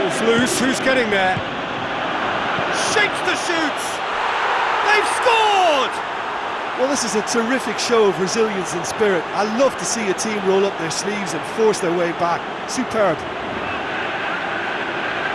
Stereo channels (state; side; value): identical; both; correlation 1.00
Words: Loose, who's getting there? Shakes the shoots! They've scored! Well, this is a terrific show of resilience and spirit. I love to see a team roll up their sleeves and force their way back. Superb.